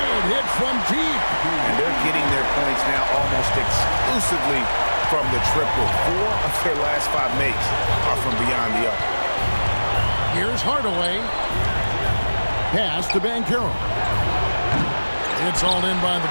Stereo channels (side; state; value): both; inverted; correlation -1.00